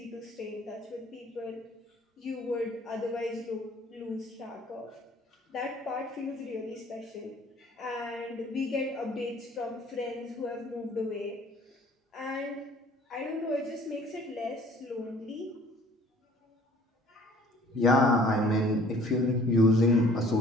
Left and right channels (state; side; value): normal; both; correlation 0.53